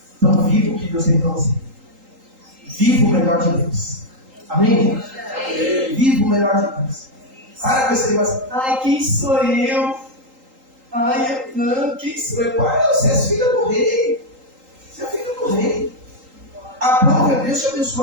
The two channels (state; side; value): late; left; 3.8 ms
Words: Então viva o que Deus tem para você. Viva o melhor de Deus. Amém, gente? Viva o melhor de Deus. Para com esse negócio. Ai, quem sou eu? Ai, não, quem sou eu? Pai, você é filha do rei. Você é filha do rei. A prova é Deus te